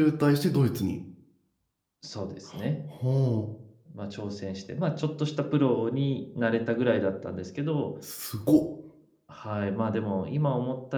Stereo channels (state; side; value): identical; both; correlation 1.00